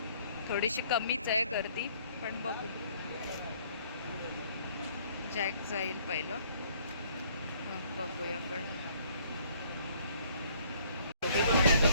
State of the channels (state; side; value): inverted; both; correlation -0.61